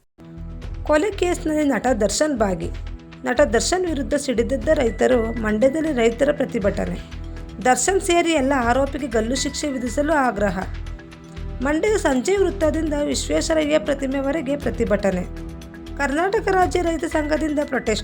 ಕೊಲೆ ಕೇಸ್ನಲ್ಲಿ ನಟ ದರ್ಶನ್ ಭಾಗಿ. ನಟ ದರ್ಶನ್ ವಿರುದ್ಧ ಸಿಡಿದೆದ್ದ ರೈತರು. ಮಂಡ್ಯದಲ್ಲಿ ರೈತರ ಪ್ರತಿಭಟನೆ. ದರ್ಶನ್ ಸೇರಿ ಎಲ್ಲ ಆರೋಪಿಗೆ ಗಲ್ಲು ಶಿಕ್ಷೆ ವಿಧಿಸಲು ಆಗ್ರಹ. ಮಂಡ್ಯದ ಸಂಜಯ್ ವೃತ್ತದಿಂದ ವಿಶ್ವೇಶ್ವರಯ್ಯ ಪ್ರತಿಮೆವರೆಗೆ ಪ್ರತಿಭಟನೆ. ಕರ್ನಾಟಕ ರಾಜ್ಯ ರೈತ ಸಂಘದಿಂದ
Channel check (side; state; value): both; identical; correlation 1.00